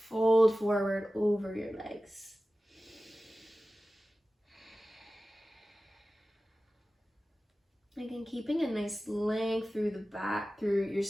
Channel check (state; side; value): normal; both; correlation 0.96